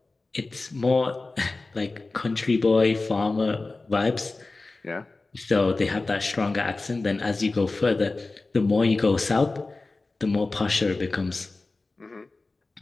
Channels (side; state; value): right; quieter; 3.4 dB